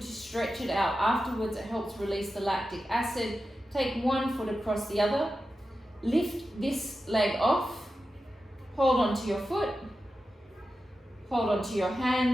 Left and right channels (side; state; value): both; normal; correlation 0.92